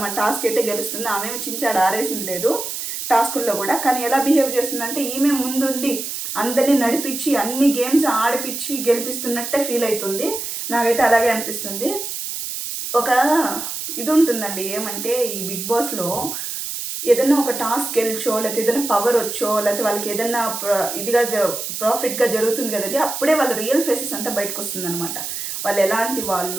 మన టాస్క్ అయితే గెలుస్తుంది. ఆమె చించాడు ఆరేసింది లేదు టాస్కుల్లో కూడా. కానీ ఎలా బిహేవ్ చేస్తుందంటే ఈమె ముందుండి అందరినీ నడిపించి అన్ని గేమ్స్ ఆడిపించి గెలిపిస్తున్నట్టే ఫీల్ అవుతుంది. నాకైతే అలాగే అనిపిస్తుంది. ఒక ఇది ఉంటుందండి, ఏమంటే ఈ బిగ్ బాస్లో ఏదైనా ఒక టాస్క్ గెలిచో లేకపోతే ఏదైనా పవర్ వచ్చో లేకపోతే వాళ్ళకి ఏదైనా ఇదిగా ప్రాఫిట్గా జరుగుతుంది కదండి, అప్పుడే వాళ్ళ రియల్ ఫేసెస్ అంతా బయటకు వస్తుంది అనమాట. వాళ్ళు ఎలాంటి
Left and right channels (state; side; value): noise; right; hiss, 5 dB below the sound